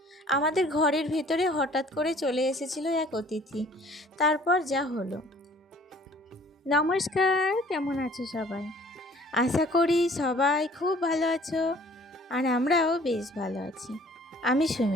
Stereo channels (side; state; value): both; normal; correlation 0.54